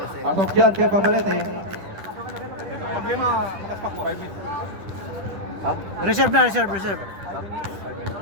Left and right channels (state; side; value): late; left; 10 ms